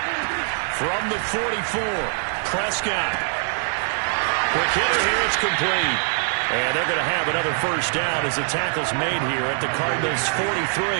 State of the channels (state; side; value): silent; left; 57 dB below the other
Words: From the 44, Prescott. Quick hitter here, it's complete. And they're going to have another 1st down as the tackle's made here at the Cardinals' 43.